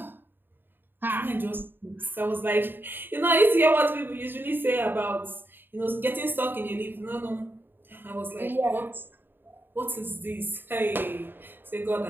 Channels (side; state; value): left; late; 0.096 ms